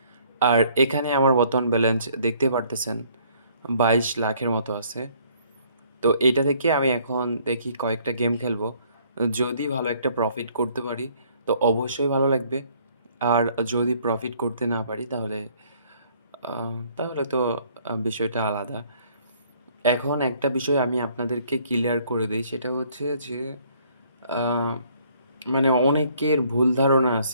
আর এখানে আমার বর্তমান ব্যালেন্স দেখতে পারতেছেন 22 লাখের মতো আছে। তো এইটা থেকে আমি এখন দেখি কয়েকটা গেম খেলবো। যদি ভালো একটা প্রফিট করতে পারি তো অবশ্যই ভালো লাগবে। আর যদি প্রফিট করতে না পারি তাহলে তো বিষয়টা আলাদা। এখন একটা বিষয় আমি আপনাদেরকে ক্লিয়ার করে দেই, সেটা হচ্ছে যে আ মানে অনেকের ভুল ধারণা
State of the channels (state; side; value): inverted; both; correlation -0.62